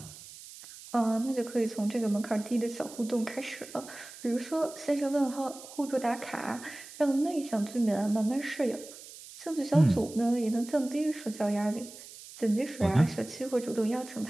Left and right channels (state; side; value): noise; right; hiss, 16 dB below the sound